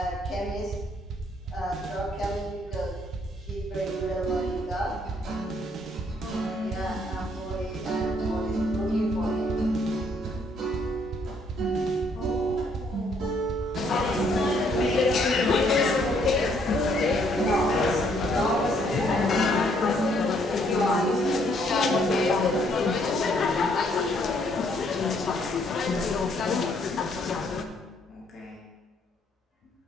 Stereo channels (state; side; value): normal; both; correlation 0.68